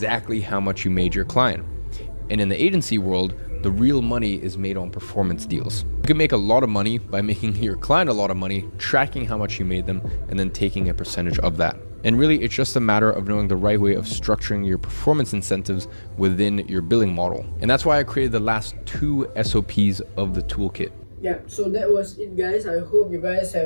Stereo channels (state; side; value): inverted; both; correlation -1.00